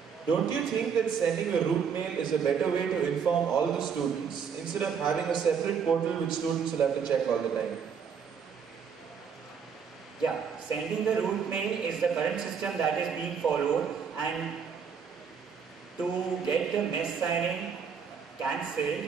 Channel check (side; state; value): left; quieter; 6.7 dB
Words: don't you think that sending a route mail is a better way to inform all the students instead of having a separate portal which students will have to check all the time? Yeah, sending the route mail is the current system that is being followed, and to get the mess signing cancelled,